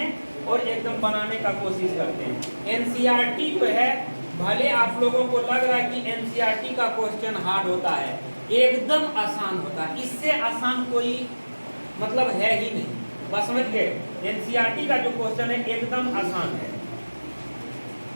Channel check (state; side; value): inverted; both; correlation -1.00